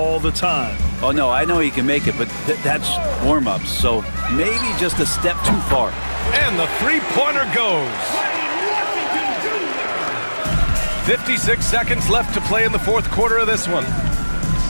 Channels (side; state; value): both; inverted; correlation -1.00